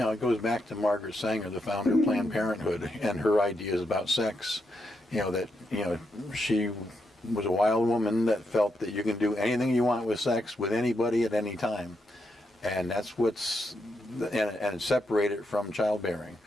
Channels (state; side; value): normal; both; correlation 0.82